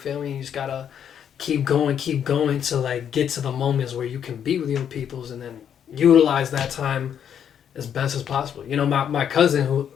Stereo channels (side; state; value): right; quieter; 8.7 dB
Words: me? You just gotta keep going to like get to the moments where you can be with your peoples, and then utilize that time as best as possible. You know, my cousin who